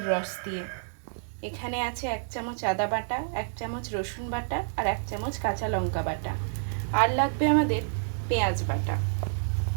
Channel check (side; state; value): left; silent; 59 dB below the other